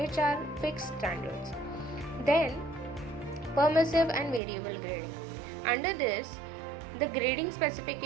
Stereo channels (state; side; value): drops out; left; at 4.4 s